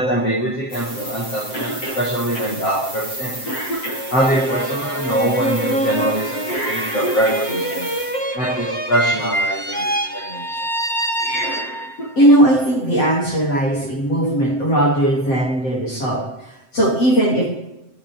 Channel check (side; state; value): right; late; 7.7 ms